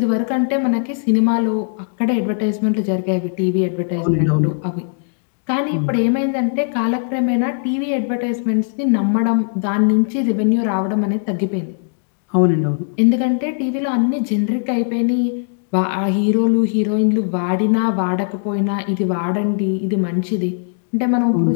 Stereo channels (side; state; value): right; silent; digital silence